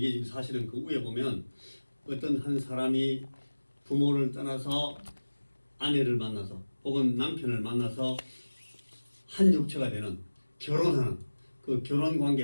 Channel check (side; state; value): both; inverted; correlation -1.00